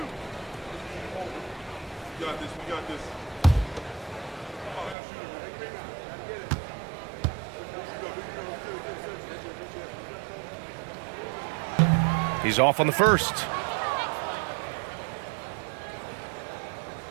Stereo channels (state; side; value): drops out; left; at 5.0 s